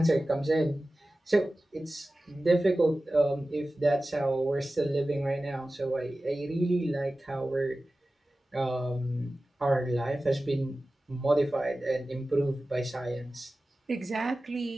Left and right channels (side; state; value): both; normal; correlation 0.96